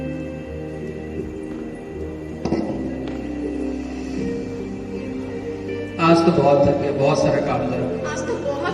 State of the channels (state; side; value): identical; both; correlation 1.00